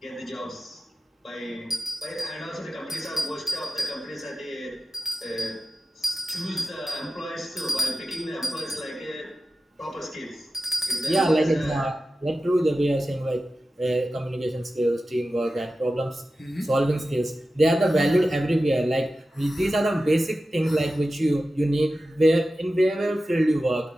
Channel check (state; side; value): normal; both; correlation 0.93